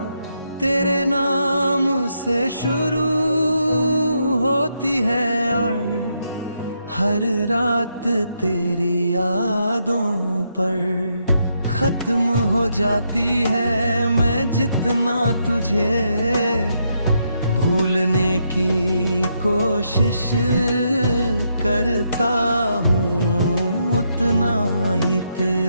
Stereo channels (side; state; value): both; inverted; correlation -0.79